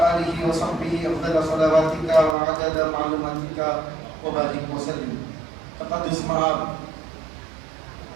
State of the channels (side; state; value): left; drops out; at 2.4 s